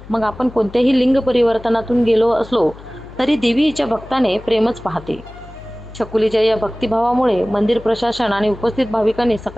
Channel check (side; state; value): left; noise; hum, 18 dB below the sound